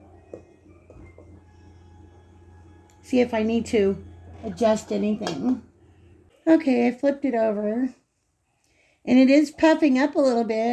See if I need to adjust anything. Okay, I flipped it over. And it is puffing up a little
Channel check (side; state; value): both; identical; correlation 1.00